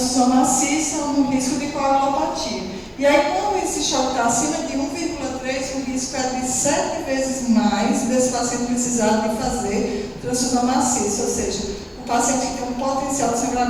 maciça ou no risco de coagulopatia. E aí, quando esse choque está acima de 1,3, o risco é de 7 vezes mais desse paciente precisar de fazer transfusão maciça, ou seja, o paciente que tem um potencial de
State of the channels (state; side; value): identical; both; correlation 1.00